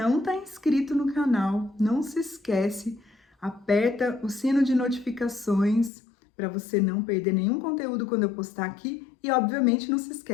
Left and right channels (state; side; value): drops out; right; at 5.9 s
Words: está inscrito no canal, não se esquece, aperta o sino de notificações para você não perder nenhum conteúdo quando eu postar aqui. E, obviamente, não se